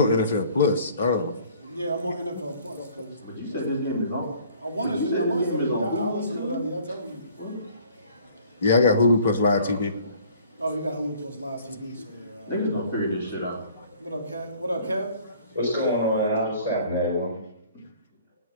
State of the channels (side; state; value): both; inverted; correlation -0.54